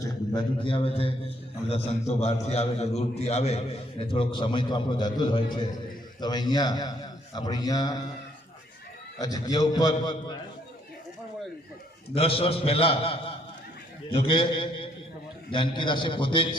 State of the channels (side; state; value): both; normal; correlation 0.67